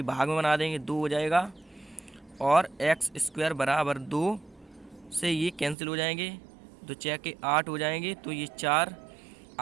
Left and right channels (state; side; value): drops out; left; at 5.8 s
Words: भाग में बना देंगे, 2 हो जाएगा। और एक्स स्क्वायर बराबर 2 से ये कैंसिल हो जाएंगे, 2 6 के 8 हो जाएंगे तो ये 4।